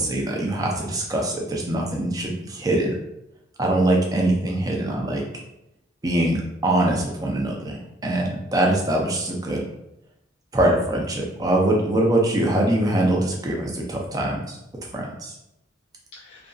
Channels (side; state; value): both; normal; correlation 0.61